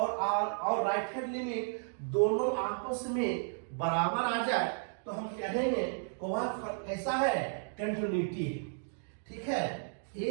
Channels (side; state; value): left; silent; digital silence